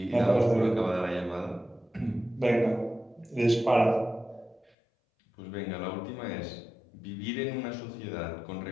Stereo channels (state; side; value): drops out; right; at 4.7 s